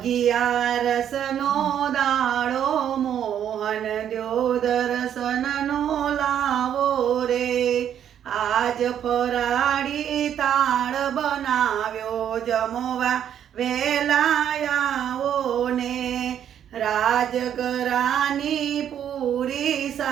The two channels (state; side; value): quieter; left; 9.6 dB